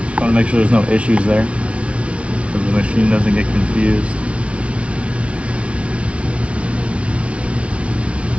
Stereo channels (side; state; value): left; late; 0.061 ms